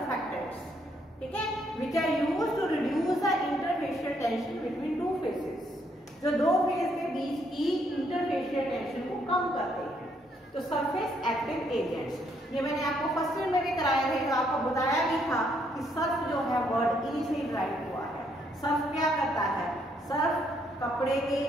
ठीक है, which are used to reduce the interfacial tension between two phases, जो दो फेस के बीच की इंटरफेशियल टेंशन को कम करते हैं। तो सरफेस एक्टिव एजेंट्स, ये मैंने आपको फर्स्ट ईयर में भी कराया है, तो आपको बताया भी था कि सर्फ जो है वर्ड ई से ड्राइव हुआ है। सर्फ क्या करता है, सर्फ कपड़े के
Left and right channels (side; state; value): both; normal; correlation 0.71